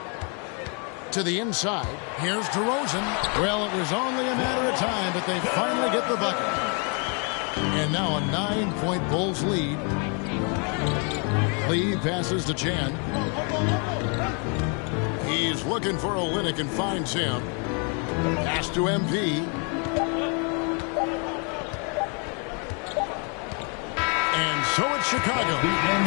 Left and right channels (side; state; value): right; quieter; 37.0 dB